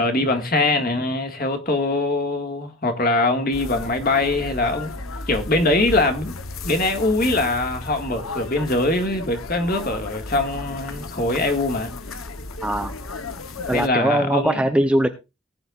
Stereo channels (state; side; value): normal; both; correlation 0.36